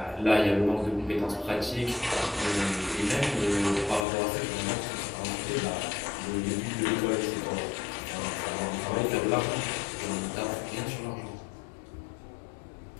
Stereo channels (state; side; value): drops out; right; at 4.0 s